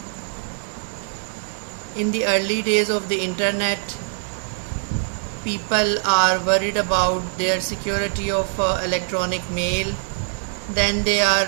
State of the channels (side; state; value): left; silent; digital silence